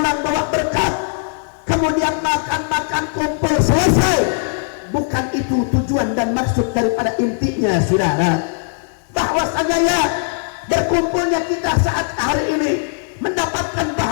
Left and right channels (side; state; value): right; silent; 61 dB below the other